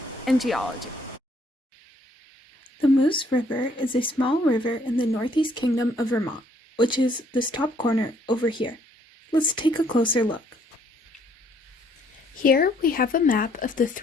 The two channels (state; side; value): normal; both; correlation 0.65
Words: and geology. The Moose River is a small river in the Northeast Kingdom of Vermont, which is this top corner over here. Let's take a closer look. Here we have a map of the